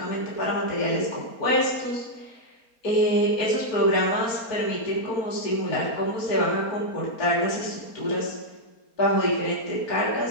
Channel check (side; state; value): right; late; 4.3 ms